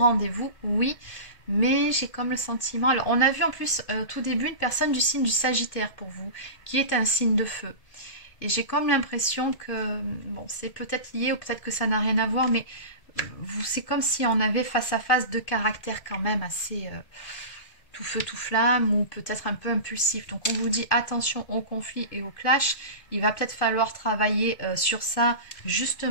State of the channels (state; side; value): late; right; 2.4 ms